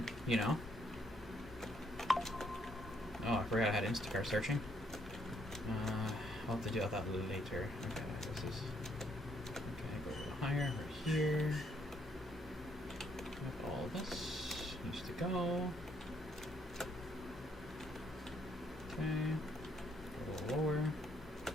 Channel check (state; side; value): normal; both; correlation 0.71